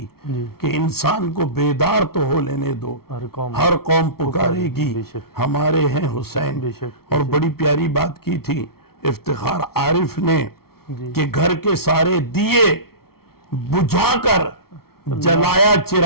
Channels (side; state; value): right; late; 0.94 ms